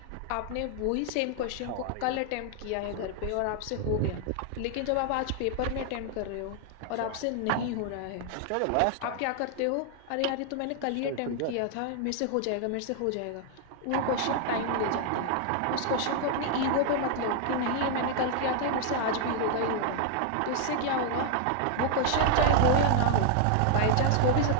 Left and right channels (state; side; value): different; both; correlation 0.00